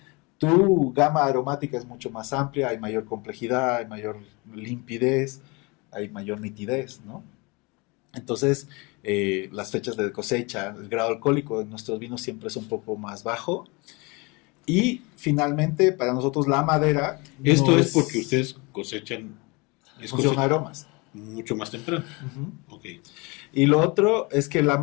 tu gama aromática es mucho más amplia, hay mayor complejidad, hay mayor limpidez, hay mayor nitidez, ¿no? Entonces, las fechas de cosecha, el grado alcohólico de nuestros vinos siempre es un poco más bajo. Y finalmente, para nosotros la madera... Esto es porque ustedes cosechan... Función aromas. Mucho más temprano. Okay. Y lo otro es que la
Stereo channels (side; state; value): right; quieter; 27.3 dB